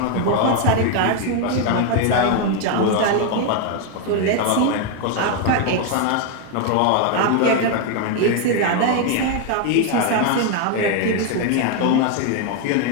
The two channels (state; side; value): different; both; correlation 0.01